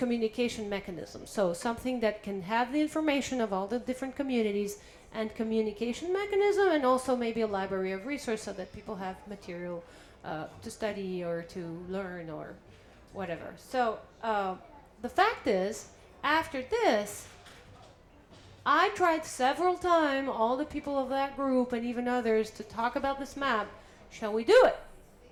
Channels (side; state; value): both; identical; correlation 1.00